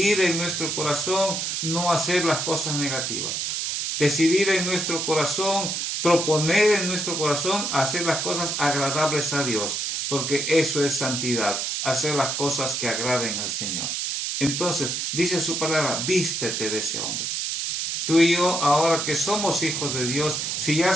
en nuestro corazón no hacer las cosas negativas. Decidir en nuestro corazón, proponer en nuestro corazón hacer las cosas agradables a Dios, porque eso es santidad, hacer las cosas que agraden al Señor. Entonces, dice su palabra, vístete de ese hombre. Tú y yo, ahora que somos hijos de Dios, si ya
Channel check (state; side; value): noise; right; hiss, 1 dB below the sound